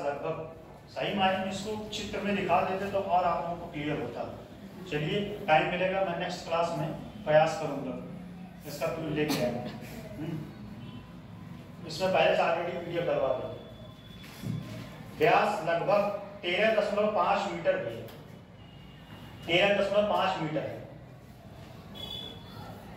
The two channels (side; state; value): both; identical; correlation 1.00